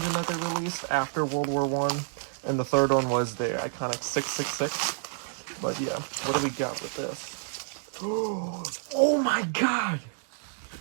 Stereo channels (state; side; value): silent; left; digital silence